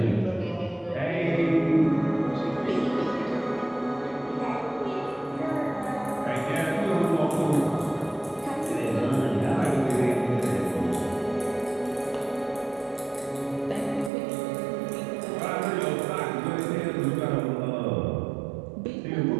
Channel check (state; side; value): drops out; left; at 14.1 s